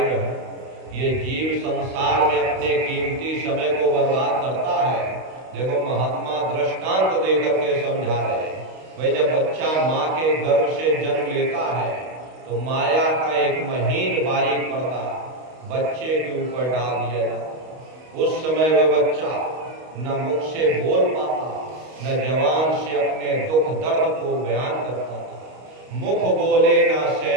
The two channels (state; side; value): late; left; 32 ms